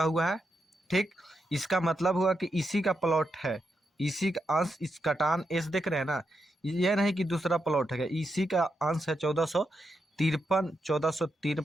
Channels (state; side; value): normal; both; correlation 0.84